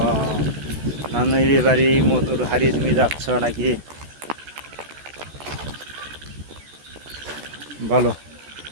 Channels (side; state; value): left; late; 14 ms